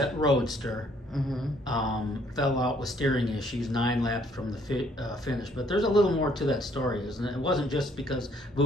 roadster fell out with steering issues 9 laps from the finish. But there's a little more to that story, isn't it? It wasn't just because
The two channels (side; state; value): both; normal; correlation 0.65